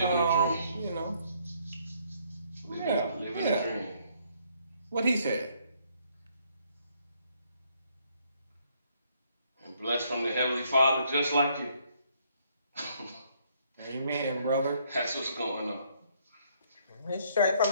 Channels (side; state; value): both; inverted; correlation -0.68